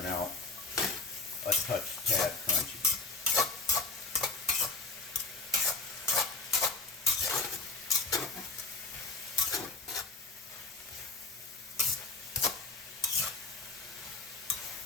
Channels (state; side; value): quieter; right; 3.6 dB